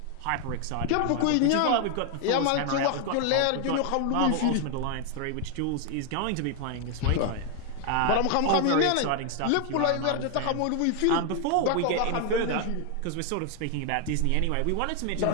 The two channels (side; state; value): both; different; correlation 0.00